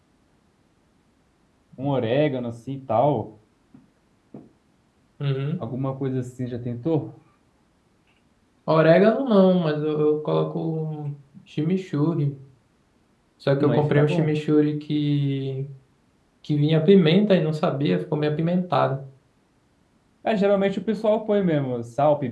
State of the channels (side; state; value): both; identical; correlation 1.00